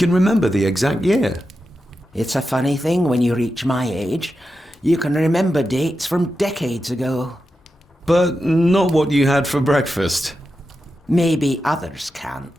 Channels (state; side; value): normal; both; correlation 0.89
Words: remember the exact year? It's a funny thing when you reach my age. You can remember dates from decades ago. But not what you had for breakfast. Maybe others